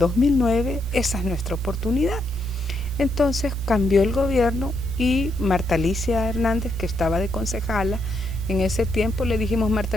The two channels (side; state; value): both; normal; correlation 0.78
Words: esa es nuestra oportunidad. Entonces cambió el gobierno y Marta Alicia Hernández, que estaba de concejala, en ese tiempo le dijimos, Marta